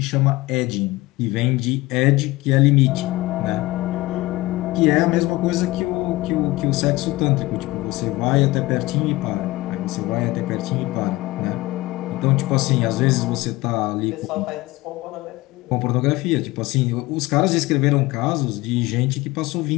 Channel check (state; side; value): quieter; right; 19.7 dB